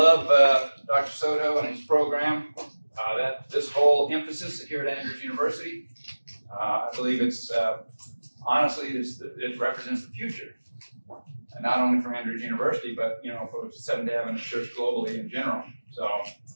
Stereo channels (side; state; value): both; inverted; correlation -1.00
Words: Dr. Soto and his program. This whole emphasis here at Andrews University. I believe it's honestly it represents the future. And not only for Andrews University, but for Seventh Day Adventist Church globally in general. So